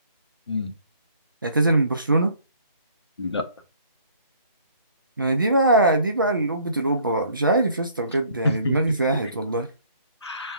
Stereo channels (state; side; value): inverted; both; correlation -0.58